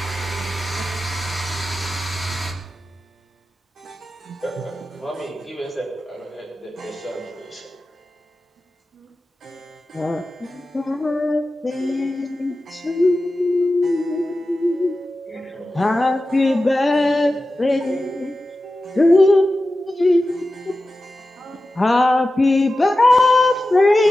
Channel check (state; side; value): normal; both; correlation 0.93